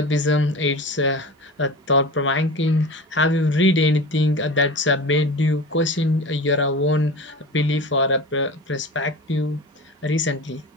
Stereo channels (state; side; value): normal; both; correlation 0.32